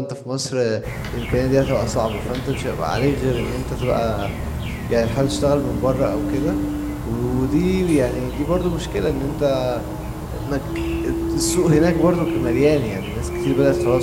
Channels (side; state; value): both; identical; correlation 1.00